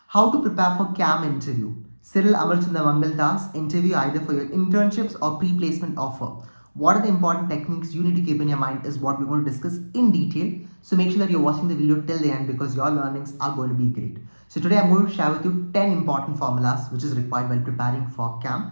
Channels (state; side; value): inverted; both; correlation -1.00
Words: How to prepare for CAM interview. Cyril Amarchandra Mangaldas interview either for your internships or pre-placement offer. What are the important techniques you need to keep in your mind is what we're going to discuss in detail. So make sure that you're watching the video till the end because your learnings are going to be great. So today I'm going to share with you 10 important formulas which is required while preparing for